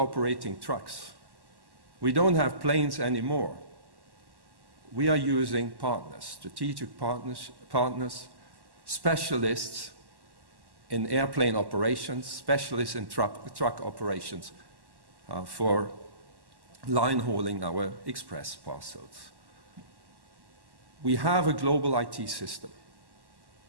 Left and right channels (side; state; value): left; late; 1.1 ms